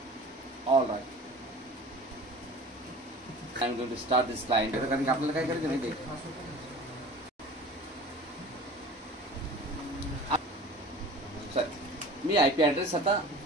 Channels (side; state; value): both; normal; correlation 0.42